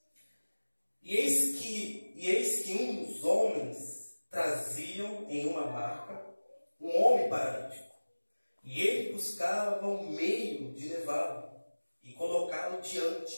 E eis que uns homens traziam em uma maca um homem paralítico. E ele buscava um meio de levá-lo e colocá-lo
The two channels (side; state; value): both; inverted; correlation -1.00